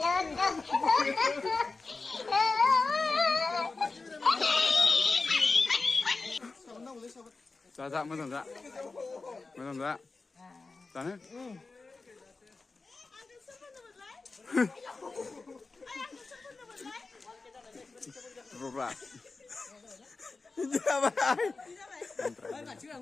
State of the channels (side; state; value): right; quieter; 3.9 dB